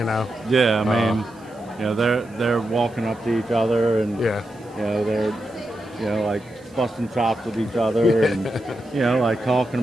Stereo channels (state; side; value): noise; right; hiss, 29 dB below the sound